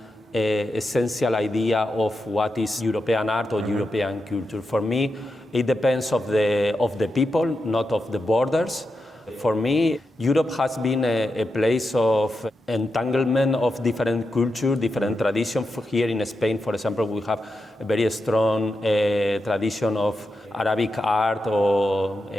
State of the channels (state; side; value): normal; both; correlation 0.88